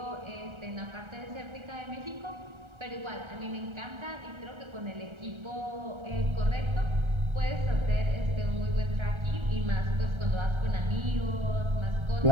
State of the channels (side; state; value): left; late; 1.3 ms